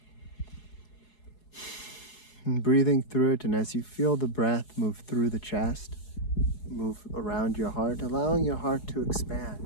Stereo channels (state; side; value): late; right; 4.7 ms